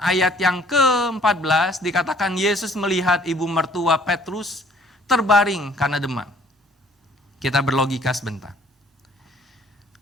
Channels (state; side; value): normal; both; correlation 0.58